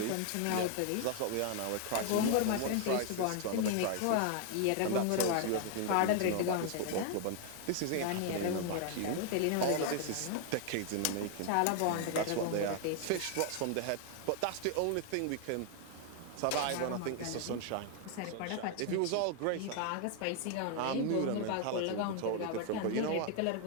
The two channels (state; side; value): different; both; correlation 0.00